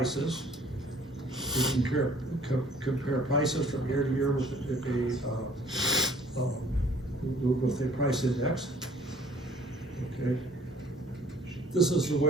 We can compare prices from year to year with a price index. Okay, this is the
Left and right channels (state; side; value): normal; both; correlation 0.55